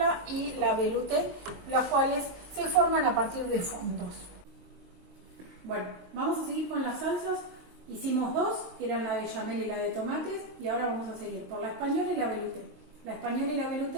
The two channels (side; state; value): left; late; 23 ms